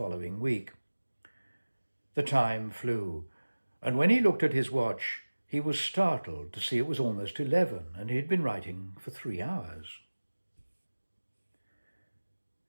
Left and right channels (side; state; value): both; inverted; correlation -1.00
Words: week. The time flew, and when he looked at his watch, he was startled to see it was almost 11, and he had been writing for 3 hours.